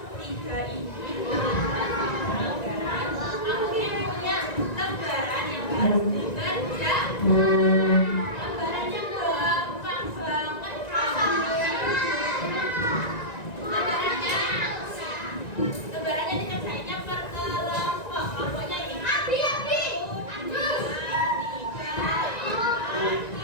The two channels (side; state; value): right; late; 1.9 ms